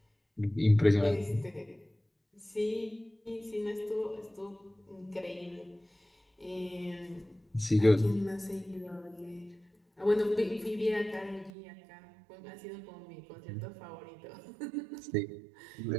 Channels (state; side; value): drops out; left; at 11.5 s